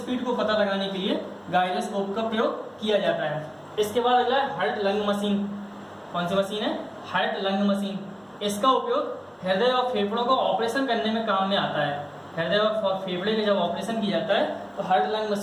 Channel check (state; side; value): identical; both; correlation 1.00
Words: को पता लगाने के लिए गायरोस्कोप का प्रयोग किया जाता है। इसके बाद अगला है हार्ट लंग मशीन। कौन सी मशीन है? Heart lung machine. इसका उपयोग हृदय और फेफड़ों को ऑपरेशन करने में काम में आता है। हृदय और फेफड़े में जब ऑपरेशन किया जाता है तो हार्ट लंग